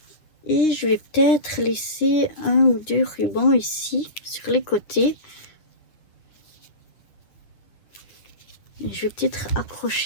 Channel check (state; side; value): late; right; 9.7 ms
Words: et je vais peut-être laisser un ou deux rubans ici sur les côtés. Et je vais peut-être